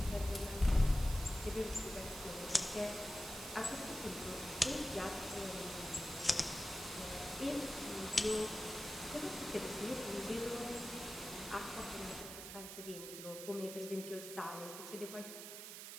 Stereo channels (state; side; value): noise; right; hiss, 9 dB below the sound